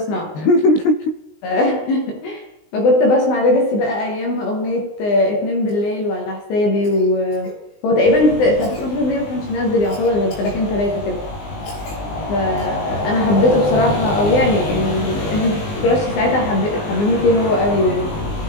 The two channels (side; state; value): right; late; 19 ms